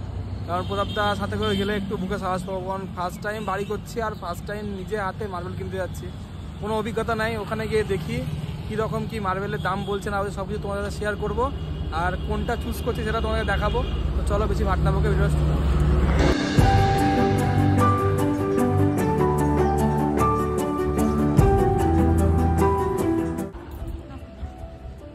কারণ প্রতাপদা সাথে করে গেলে একটু বুকে সাহস পাবো, কারণ ফার্স্ট টাইম বাড়ি করছি আর ফার্স্ট টাইম নিজে হাতে মার্বেল কিনতে যাচ্ছি। কোনো অভিজ্ঞতা নাই, ওখানে গিয়ে দেখি কীরকম কী মার্বেলের দাম বলছে না, সব কিছু তোমাদের সাথে শেয়ার করবো, আর কোনটা চুজ করছি সেটা তোমাদের দেখাবো। তো চলো বেশি ভাটনা বকে ভিডিও।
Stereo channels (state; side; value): identical; both; correlation 1.00